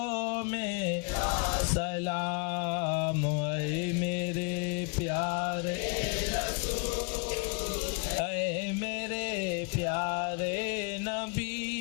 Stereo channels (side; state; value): right; quieter; 32.9 dB